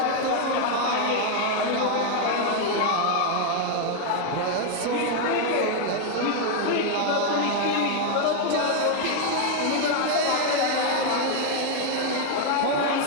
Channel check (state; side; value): different; both; correlation 0.01